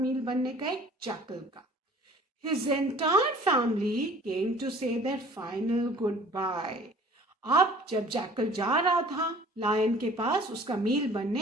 बनने का? एक जैकल का. His entire family came to say their final goodbye. अब जब जैकल जा रहा था लायन के पास उसका मील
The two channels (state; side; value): normal; both; correlation 0.50